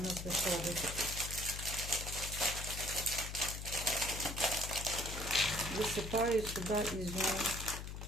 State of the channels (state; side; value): noise; left; hum, 7 dB below the sound